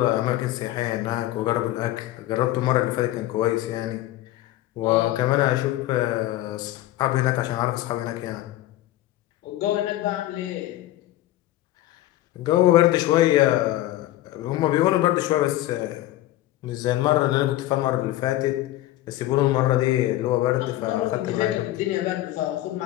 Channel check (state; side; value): quieter; right; 15.2 dB